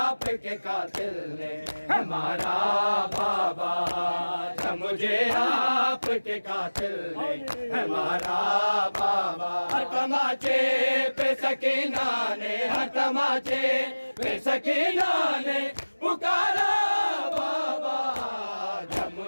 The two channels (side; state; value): both; inverted; correlation -1.00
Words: कातिल ने हमारा बाबा, जब मुझे आपके कातिल ने हमारा बाबा। हर तमाचे पे सकीना ने, हर तमाचे पे सकीना ने पुकारा बाबा, जब